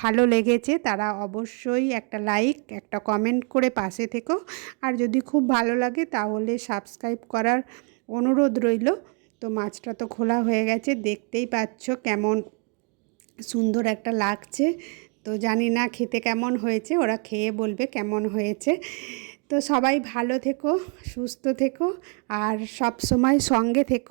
ভালো লেগেছে তারা অবশ্যই একটা লাইক একটা কমেন্ট করে পাশে থেকো। আর যদি খুব ভালো লাগে তাহলে সাবস্ক্রাইব করার অনুরোধ রইল। তো মাছটা তো খোলা হয়ে গেছে, দেখতেই পাচ্ছ কেমন সুন্দর একটা লাগছে। তো জানি না খেতে কেমন হয়েছে, ওরা খেয়ে বলবে কেমন হয়েছে। তো সবাই ভালো থেকো, সুস্থ থেকো আর সব সময় সঙ্গে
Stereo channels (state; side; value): quieter; left; 37.1 dB